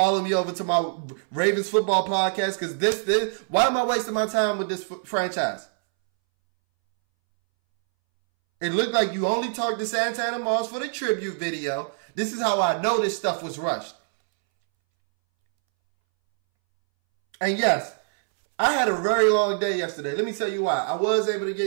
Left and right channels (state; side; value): silent; left; 62 dB below the other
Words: me over to my Ravens football podcast, because this, why am I wasting my time with this franchise? It looked like you only talked to Santana Moss for the tribute video. This is how I know this stuff was rushed. And yes, I had a very long day yesterday. Let me tell you why. I was able to